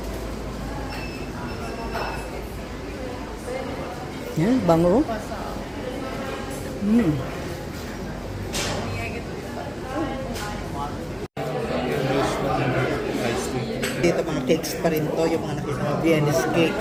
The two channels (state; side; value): identical; both; correlation 1.00